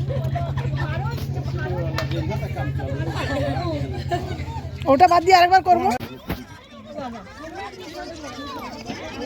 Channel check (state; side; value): identical; both; correlation 1.00